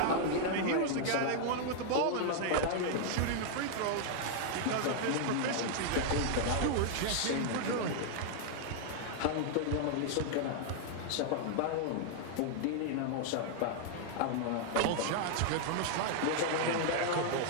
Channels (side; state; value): both; different; correlation -0.01